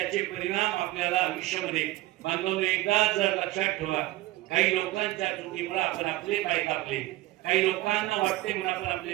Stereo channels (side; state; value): left; quieter; 17.5 dB